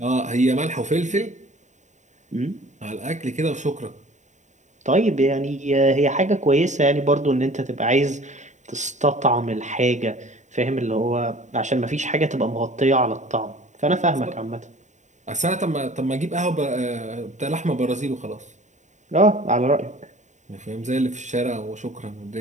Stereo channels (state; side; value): late; left; 0.34 ms